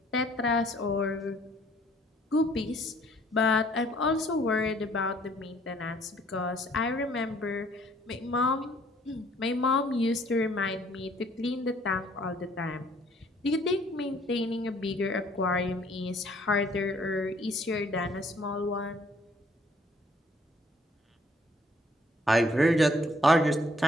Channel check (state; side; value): normal; both; correlation 0.61